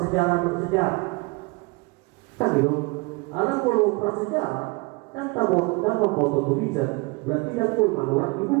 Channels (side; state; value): left; quieter; 27.0 dB